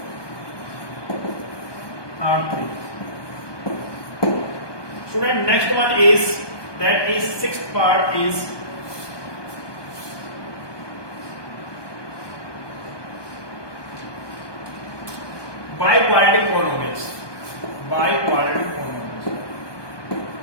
are 3. Student, next one is, that is sixth part is biquadratic polynomials. Biquadratic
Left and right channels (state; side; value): late; right; 1.2 ms